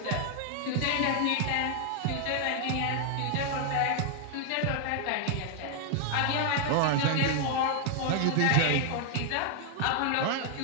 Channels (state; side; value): different; both; correlation 0.00